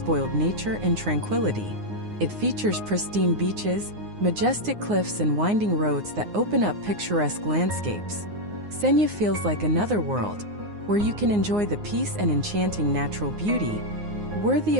nature and tranquility. It features pristine beaches, majestic cliffs and winding roads that open up picturesque landscapes. Senja feels like another world, where you can enjoy the peace and enchanting natural beauty, worthy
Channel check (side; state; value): left; late; 9.6 ms